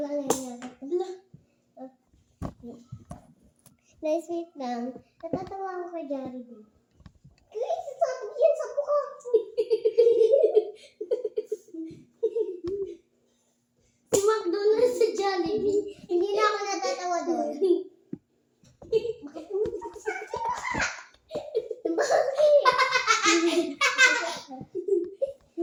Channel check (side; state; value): both; identical; correlation 1.00